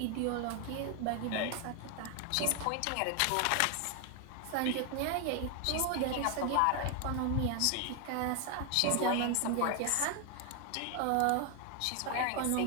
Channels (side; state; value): both; different; correlation 0.00